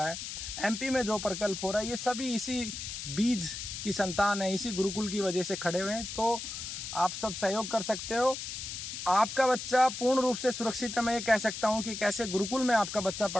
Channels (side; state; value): left; noise; hiss, 7 dB below the sound